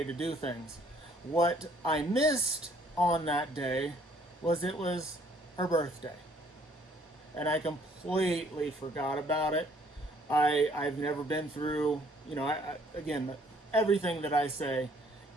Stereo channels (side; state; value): both; normal; correlation 0.62